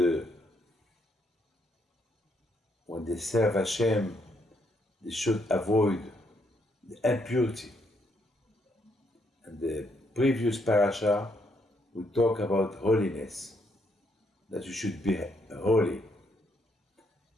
when they serve Hashem, they should avoid the impurity. And the previous parasha, we talk about holiness, that you should be holy.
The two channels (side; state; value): both; normal; correlation 0.74